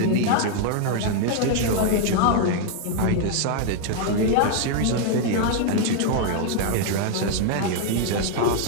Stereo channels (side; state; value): both; different; correlation 0.00